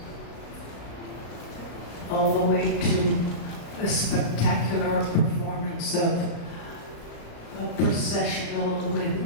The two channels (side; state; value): right; late; 36 ms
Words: all the way to a spectacular performance of a processional with